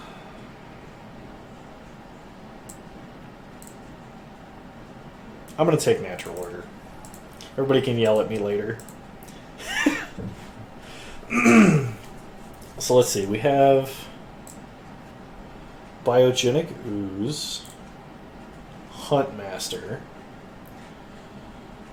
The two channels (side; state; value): both; identical; correlation 1.00